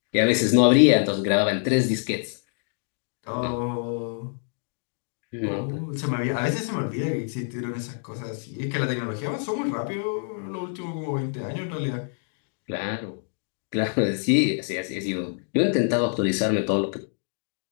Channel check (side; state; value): right; silent; 61 dB below the other